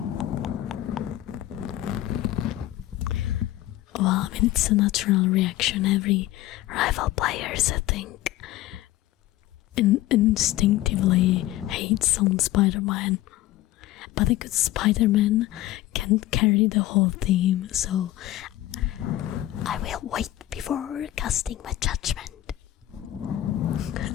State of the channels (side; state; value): right; quieter; 15.0 dB